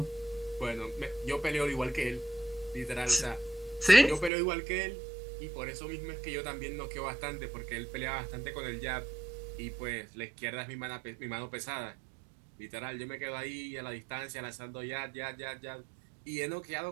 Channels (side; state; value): left; drops out; at 4.3 s